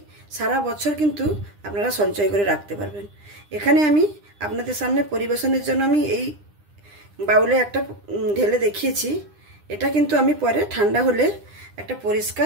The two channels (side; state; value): left; late; 9.9 ms